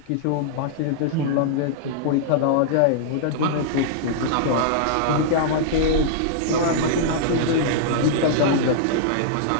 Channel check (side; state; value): both; different; correlation -0.01